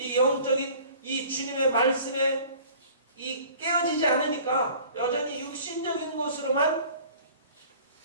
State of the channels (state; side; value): inverted; both; correlation -0.48